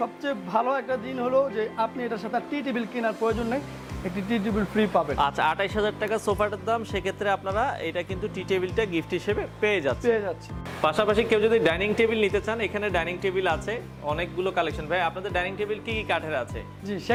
ভালো একটা দিন হলো যে আপনি এটার সাথে টি টেবিল কেনার প্রয়োজন নেই, একটি টি টেবিল ফ্রি পাবেন। আচ্ছা, 28,000 টাকা সোফাটার দাম, সেক্ষেত্রে আপনারা এটা কিন্তু টি টেবিলটা গিফট হিসেবে পেয়ে যাচ্ছে। পাশাপাশি কেউ যদি ডাইনিং টেবিল নিতে চান, এখানে ডাইনিং টেবিল আছে অনেকগুলো কালেকশন। ভাই আপনাদের ডাইনিং টেবিল কি কি কাঠের আছে? জি,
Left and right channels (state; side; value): identical; both; correlation 1.00